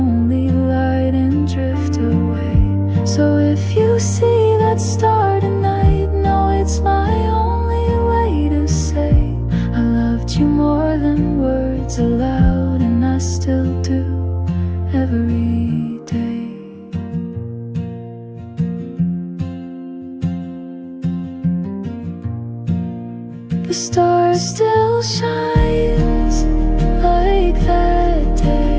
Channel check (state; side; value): identical; both; correlation 1.00